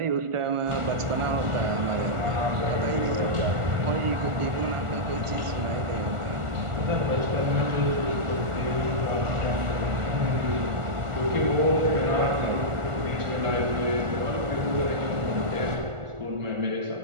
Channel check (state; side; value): late; left; 1.4 ms